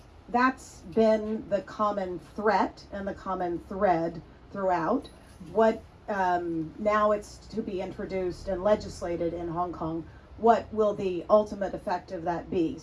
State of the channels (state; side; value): identical; both; correlation 1.00